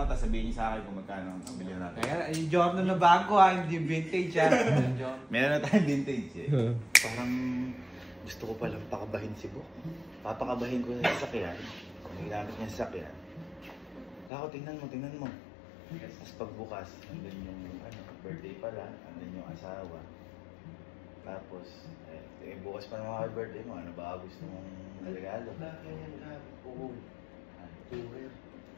sabihin niyo sa akin kung magkano ang bilhin natin. Kaya yung Giorno na bago hindi vintage Meron na tayong vintage Parang gusto ko palang pakabahin si Bok. Papakabahin ko sa sasakyan. Kung ginamit niya sa sasakyan. Ako, tingnan mo. Tapos pagbukas, nandun yung birthday pala, nandun yung asawa. Tapos, bukas pa naman birthday mo, ano ba gusto mong regalo? Oo. Tourer.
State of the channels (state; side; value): drops out; right; at 14.3 s